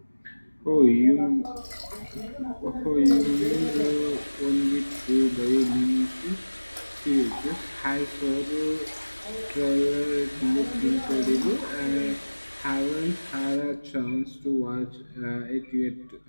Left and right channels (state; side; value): inverted; both; correlation -1.00